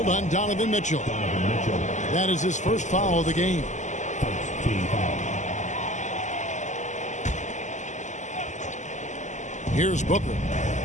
on Donovan Mitchell. That is his first foul of the game. Here's Booker.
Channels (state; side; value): late; right; 0.34 ms